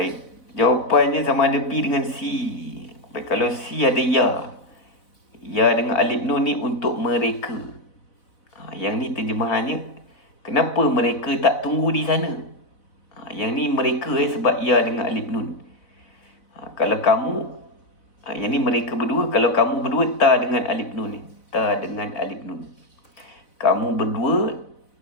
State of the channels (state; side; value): late; right; 4.0 ms